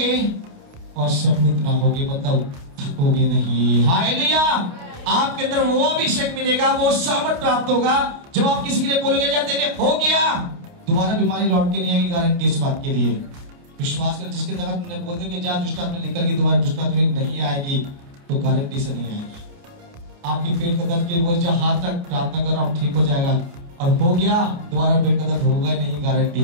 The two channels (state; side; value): late; left; 29 ms